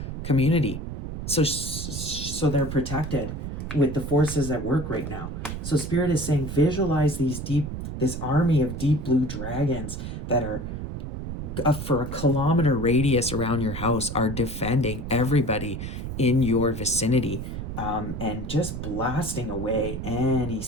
community. So they're protected with the forces at work right now. So Spirit is saying, visualize this army of deep blue dragons that are for 1 kilometer radius around your house, are defending everybody in your vicinity. And just blasting away any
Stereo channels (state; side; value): noise; right; rumble, 6 dB below the sound